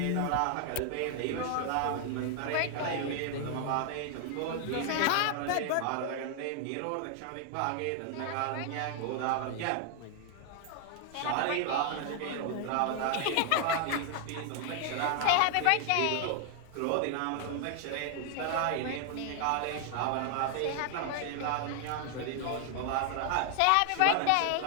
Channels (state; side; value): different; both; correlation 0.00